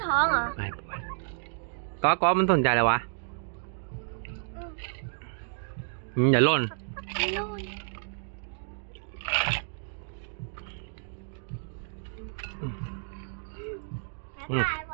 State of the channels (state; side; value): silent; left; digital silence